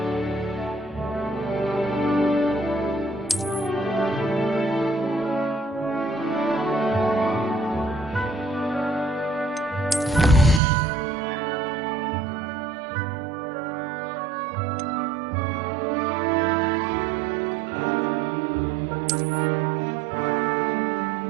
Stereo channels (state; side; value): drops out; left; at 10.6 s